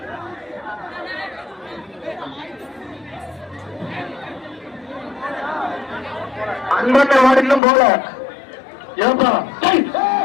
அன்பட்ட மாடிலும் போல ஏப்பா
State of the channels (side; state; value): right; drops out; at 7.6 s